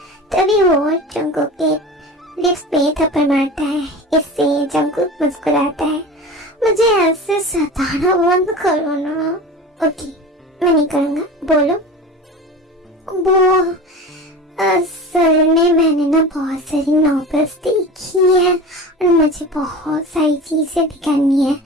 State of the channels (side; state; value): both; normal; correlation 0.33